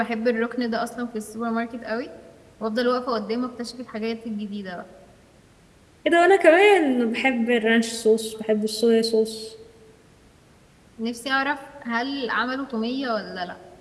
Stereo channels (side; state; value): both; identical; correlation 1.00